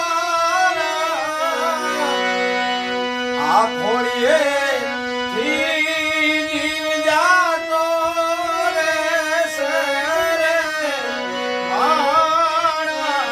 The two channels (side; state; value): both; identical; correlation 1.00